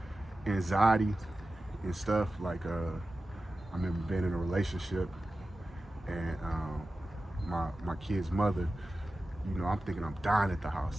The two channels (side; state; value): both; normal; correlation 0.94